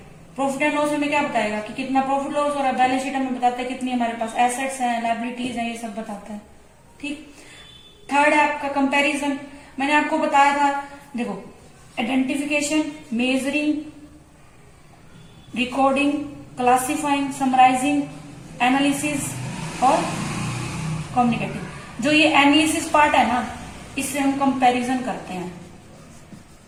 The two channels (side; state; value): both; identical; correlation 1.00